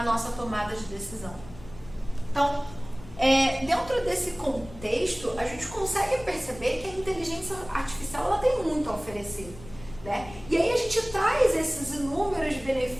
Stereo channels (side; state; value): left; noise; rumble, 17 dB below the sound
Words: nossa tomada de decisão. Então, dentro desse contexto, a gente consegue perceber que a inteligência artificial ela tem muito a oferecer, né? E aí a gente traz esses inúmeros